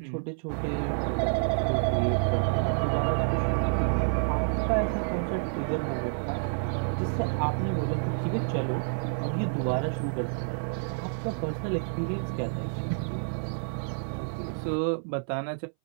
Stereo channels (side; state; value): left; silent; 59 dB below the other